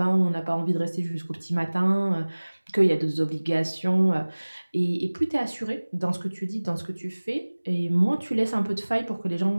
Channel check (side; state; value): both; inverted; correlation -1.00